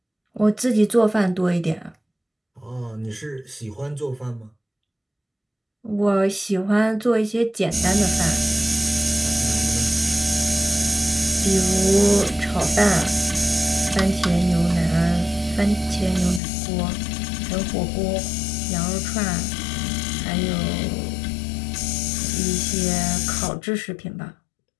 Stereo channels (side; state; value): right; drops out; at 16.4 s